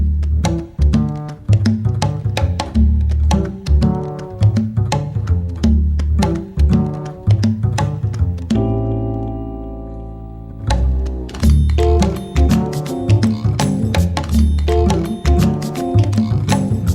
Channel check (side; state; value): both; identical; correlation 1.00